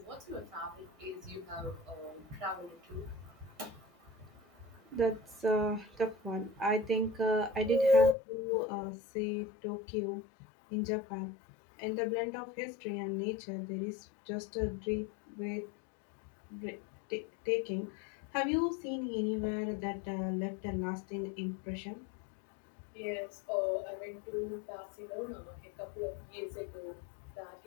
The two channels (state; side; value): drops out; right; at 8.2 s